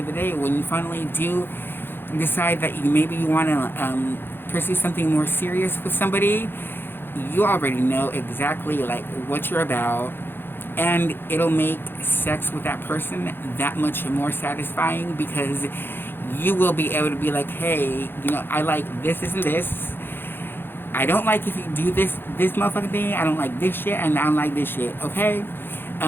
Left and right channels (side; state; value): right; late; 0.10 ms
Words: of the day, when you finally do decide that you want to pursue something more serious with somebody, you already know exactly like what you're about, and it'll make sex with that person that much more satisfying, because you will be able to be like, hey, I like this and this. I don't like if you do this motherfucking thing. I don't like this shit, and I don't like this shit. Okay,